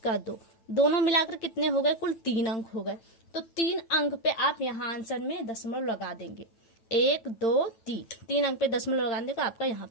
2, दोनों मिलाकर कितने हो गए, कुल 3 अंक हो गए। तो 3 अंक पे आप यहाँ आंसर में दशमलव लगा देंगे, 1 2 3 अंक पे दशमलव लगा देंगे तो आपका यहाँ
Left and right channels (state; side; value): late; right; 9.1 ms